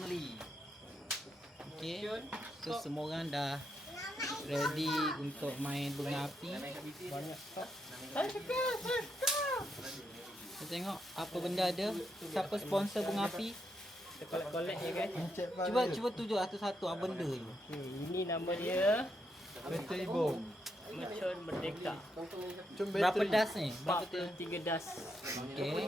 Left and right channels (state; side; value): normal; both; correlation 0.80